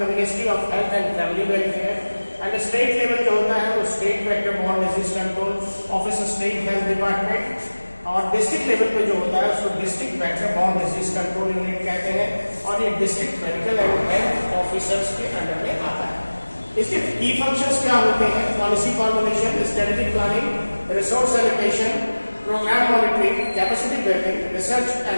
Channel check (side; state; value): both; inverted; correlation -1.00